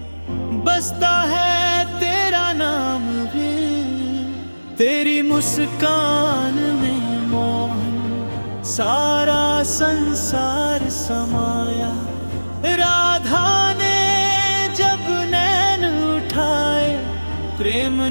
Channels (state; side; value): inverted; both; correlation -1.00